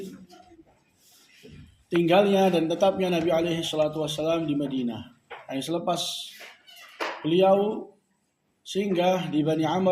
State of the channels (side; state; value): both; identical; correlation 1.00